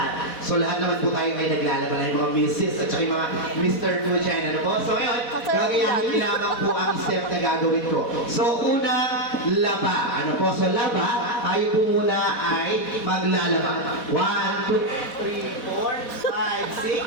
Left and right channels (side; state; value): right; late; 4.1 ms